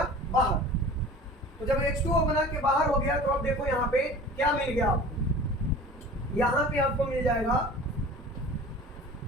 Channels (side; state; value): both; normal; correlation 0.41